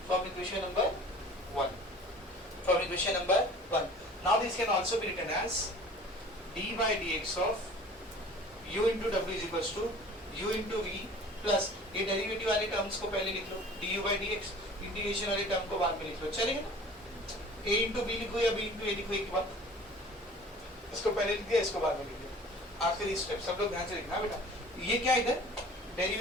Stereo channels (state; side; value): normal; both; correlation 0.45